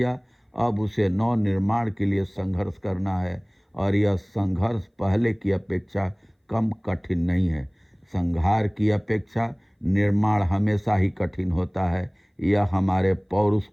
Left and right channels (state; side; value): identical; both; correlation 1.00